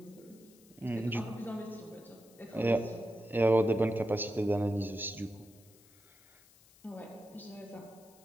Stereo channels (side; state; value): left; noise; hiss, 27 dB below the sound